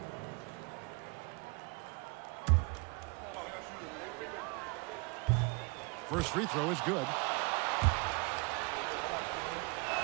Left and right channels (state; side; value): quieter; left; 29.1 dB